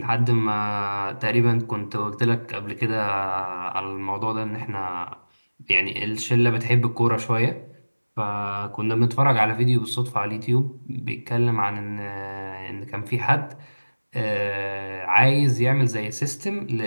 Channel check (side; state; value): both; inverted; correlation -1.00